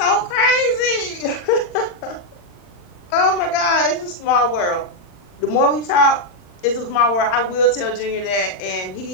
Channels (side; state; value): right; late; 40 ms